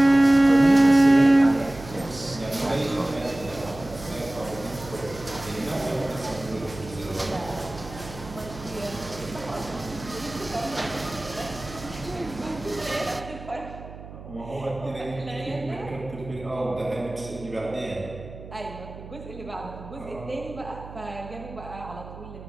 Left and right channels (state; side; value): noise; right; hum, 14 dB below the sound